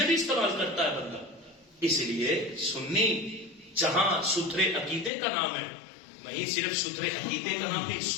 بھی استعمال کرتا ہے بندہ. اس لیے سنی جہاں ستھرے عقیدے کا نام ہے، وہیں صرف ستھرے عقیدے کا نام نہیں،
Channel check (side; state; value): right; drops out; at 5.1 s